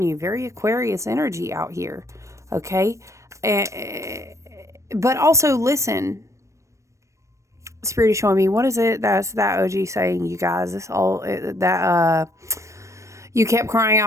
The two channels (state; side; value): late; left; 0.15 ms